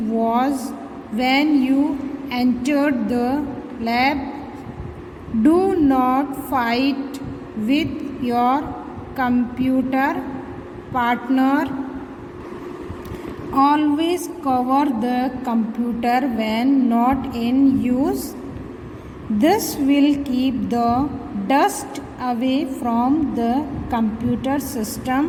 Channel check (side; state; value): both; identical; correlation 1.00